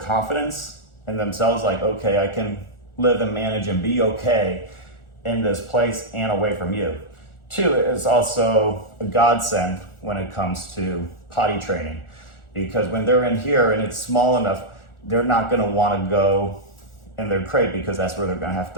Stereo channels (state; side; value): late; right; 1.4 ms